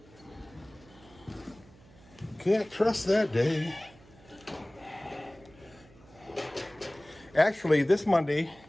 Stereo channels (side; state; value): right; noise; hum, 25 dB below the sound